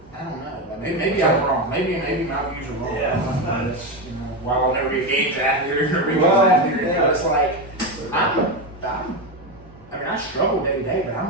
don't know. Like maybe I'm wrong. Maybe my views are wrong. Yeah. You know, while I'll never be a games athlete or a regional Well, athlete, yeah. it's like I mean, I struggle day to day, but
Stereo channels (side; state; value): both; normal; correlation 0.13